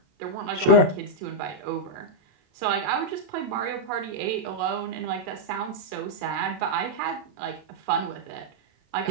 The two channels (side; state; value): left; late; 27 ms